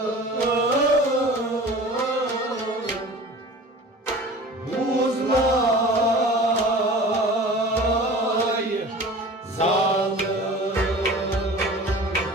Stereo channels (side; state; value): both; normal; correlation 0.40